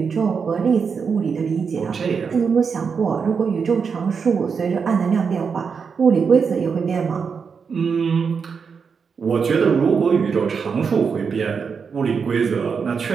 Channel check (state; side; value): quieter; left; 5.9 dB